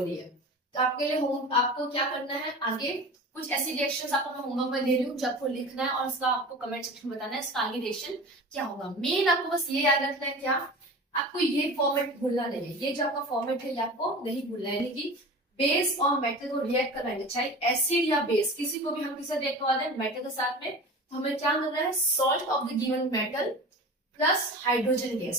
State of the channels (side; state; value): both; normal; correlation 0.35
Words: है। तो आपके लिए आपको क्या करना है, आगे कुछ ऐसी रिएक्शंस आपको मैं होमवर्क में दे रही हूँ जो आपको लिखना है और उसका आपको कमेंट सेक्शन में बताना है इसका आगे रिएक्शन क्या होगा। मेन आपको बस ये याद रखना है, क्या आपको ये फॉर्मेट भूलना नहीं है, ये जो आपका फॉर्मेट है ये आपको नहीं भूलना है, यानी कि बेस और मेटल को रिएक्ट कराएंगे, चाहे एसिड या बेस किसी को भी हम किससे रिएक्ट करवा दें, मेटल के साथ में, तो हमें क्या मिल रहा है, salt of the given metal plus hydrogen